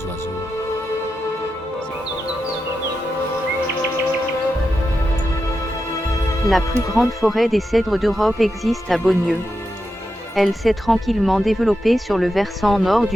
oiseaux. La plus grande forêt des cèdres d'Europe existe à Beaunieu. Elle s'est tranquillement développée sur le versant nord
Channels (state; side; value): normal; both; correlation 0.88